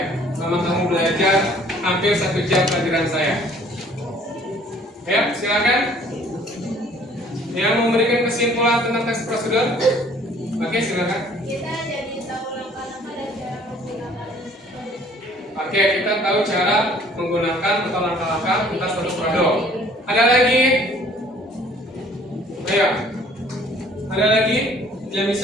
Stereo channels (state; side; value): normal; both; correlation 0.56